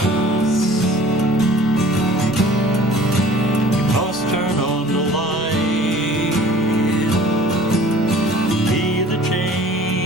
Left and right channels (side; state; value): both; normal; correlation 0.48